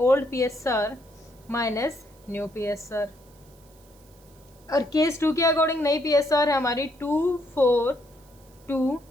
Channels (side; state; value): right; noise; hiss, 29 dB below the sound